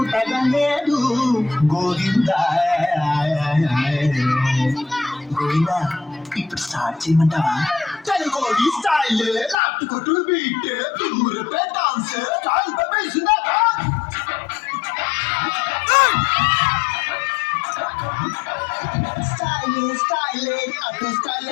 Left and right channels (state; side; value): drops out; right; at 9.6 s